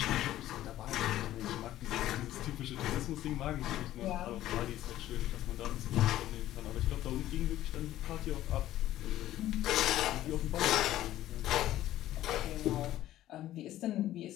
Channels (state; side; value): quieter; right; 13.8 dB